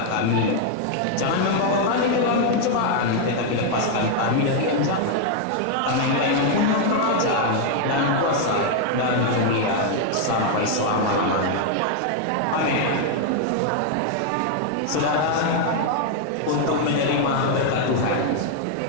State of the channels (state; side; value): different; both; correlation 0.00